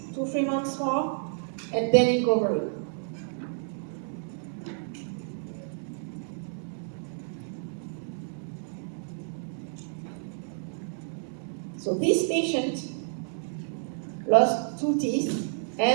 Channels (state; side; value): silent; left; digital silence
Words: months more, and then you cover it. So this patient lost 2 teeth,